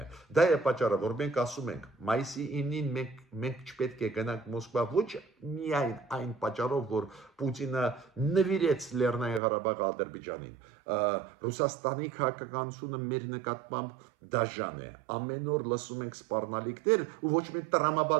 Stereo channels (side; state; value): left; drops out; at 9.4 s